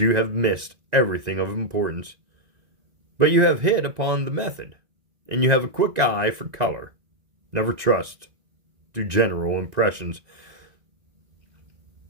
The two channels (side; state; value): left; late; 1.9 ms